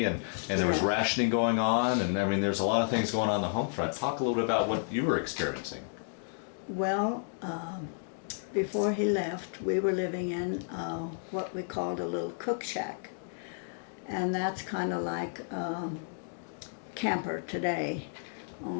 and there was rationing going on? And I mean, there's a lot of things going on the home front. Talk a little bit about what you were experiencing. well, before he left, we were living in what we called a little cook shack. And that's kind of like camper today,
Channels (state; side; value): silent; right; digital silence